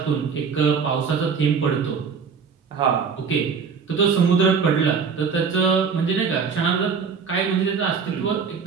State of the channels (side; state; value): left; quieter; 5.9 dB